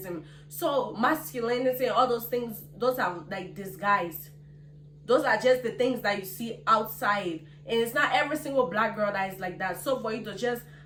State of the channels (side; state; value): both; identical; correlation 1.00